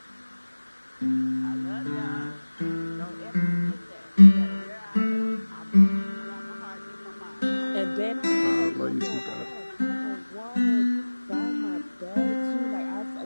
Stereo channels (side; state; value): both; inverted; correlation -1.00